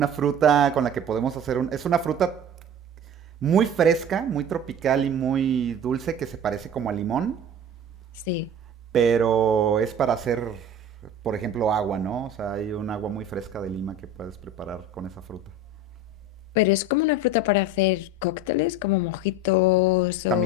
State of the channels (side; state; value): both; normal; correlation 0.36